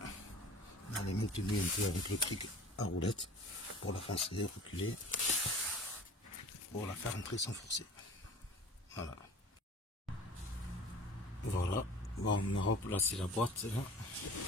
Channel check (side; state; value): both; normal; correlation 0.42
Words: Elle est maintenue un peu avec le cric à roulette pour la foncer, reculer, pour la faire entrer sans forcer. Voilà. Voilà. Bon, on a replacé la boîte là,